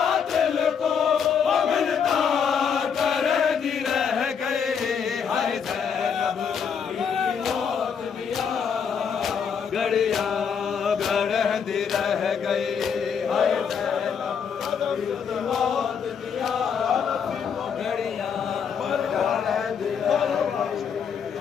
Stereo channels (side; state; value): right; quieter; 6.9 dB